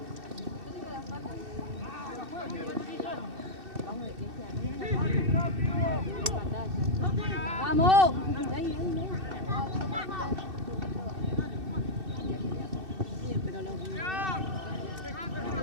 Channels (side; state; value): left; late; 2.6 ms